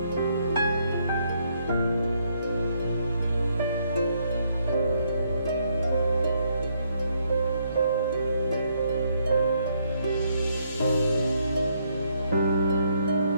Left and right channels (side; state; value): both; inverted; correlation -0.72